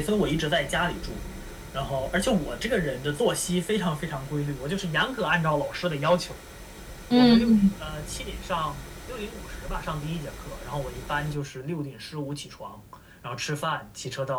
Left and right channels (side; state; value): both; identical; correlation 1.00